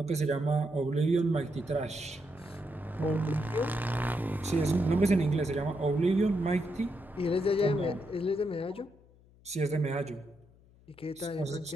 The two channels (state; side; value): noise; left; hum, 27 dB below the sound